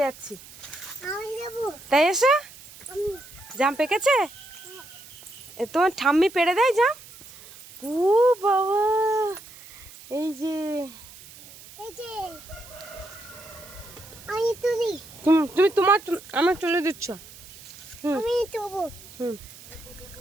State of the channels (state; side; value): noise; right; hiss, 19 dB below the sound